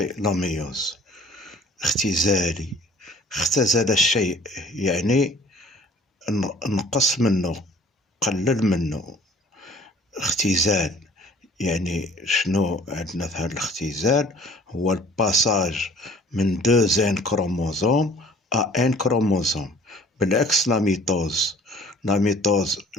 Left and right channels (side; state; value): both; normal; correlation 0.51